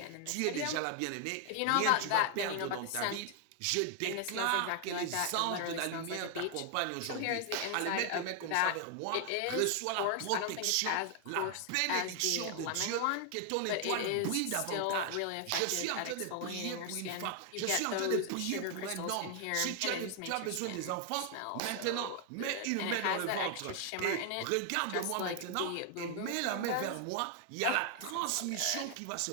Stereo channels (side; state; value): both; different; correlation 0.00